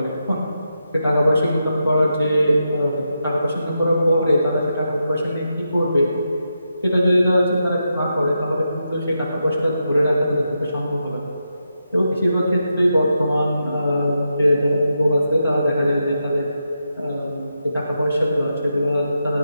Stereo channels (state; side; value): inverted; both; correlation -0.85